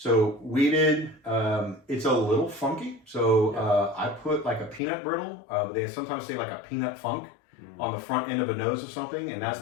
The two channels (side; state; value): right; drops out; at 4.8 s